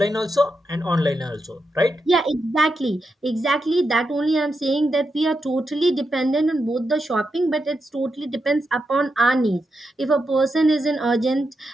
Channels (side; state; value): both; normal; correlation 0.86